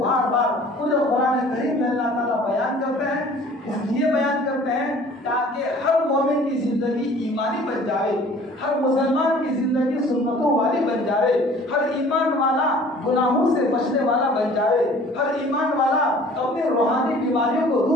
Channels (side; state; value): both; normal; correlation 0.50